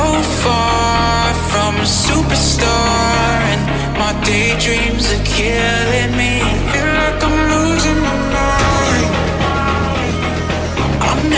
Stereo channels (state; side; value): identical; both; correlation 1.00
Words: far from a superstar, and my daydreams are killing me. Feel like I'm losing my mind. I'm